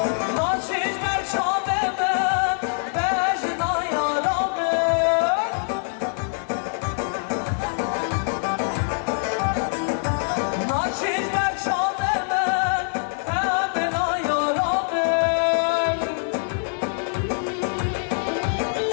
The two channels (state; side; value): silent; right; 59 dB below the other